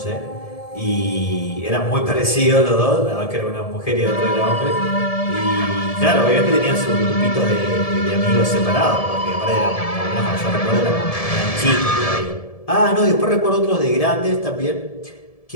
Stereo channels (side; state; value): right; late; 1.7 ms